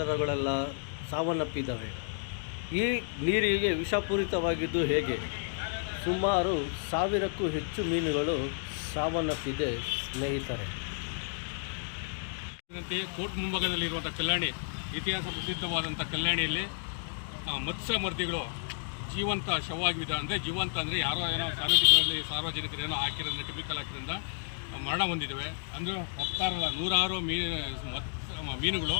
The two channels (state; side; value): silent; right; digital silence